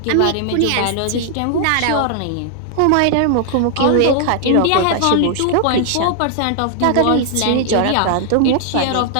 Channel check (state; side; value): different; both; correlation 0.00